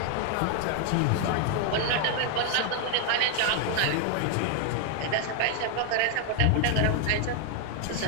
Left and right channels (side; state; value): both; different; correlation 0.00